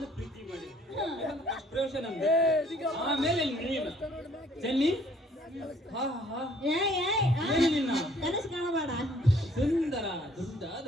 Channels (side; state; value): both; normal; correlation 0.60